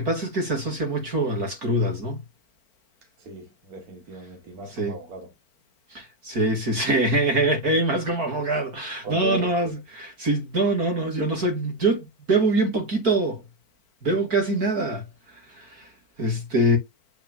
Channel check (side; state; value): left; late; 4.5 ms